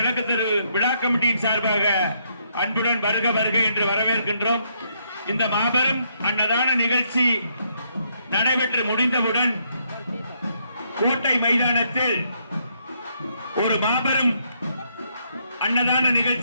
தெரு விழா கமிட்டியின் சார்பாக அன்புடன் வருக வருக என்று வரவேற்கின்றோம். இந்த மாபெரும் அன்னதான நிகழ்ச்சி நடைபெற்று முடிந்தவுடன் கோட்டை மைதானத்தில் ஒரு மாபெரும் அன்னதான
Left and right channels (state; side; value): inverted; both; correlation -0.73